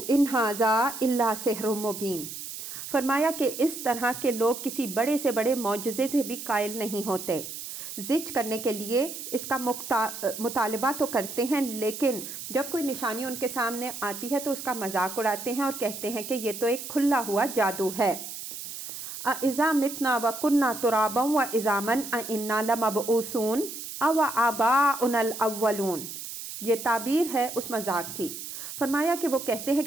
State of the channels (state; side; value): noise; right; hiss, 9 dB below the sound